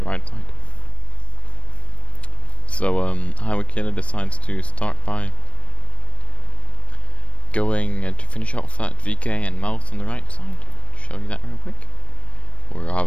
right side. So Highway Killer decides to start by going to finish off that VK and Mouse on the right side. Show you that real quick. We're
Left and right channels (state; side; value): late; right; 0.062 ms